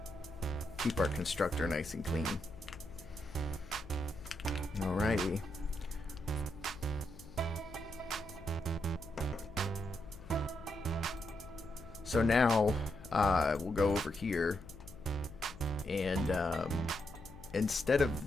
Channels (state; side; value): noise; left; hum, 17 dB below the sound